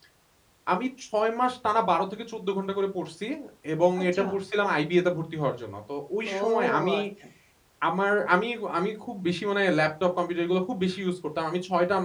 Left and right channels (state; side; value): identical; both; correlation 1.00